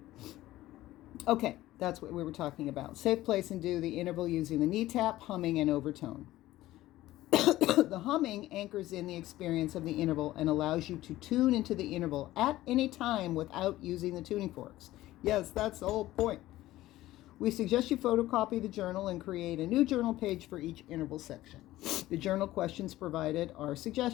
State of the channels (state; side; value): quieter; right; 15.9 dB